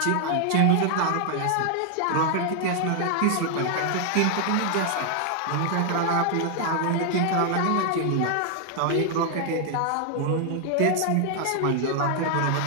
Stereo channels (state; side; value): different; both; correlation 0.00